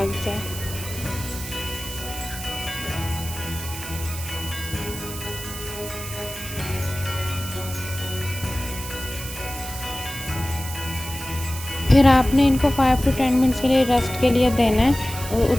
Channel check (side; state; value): right; noise; hiss, 10 dB below the sound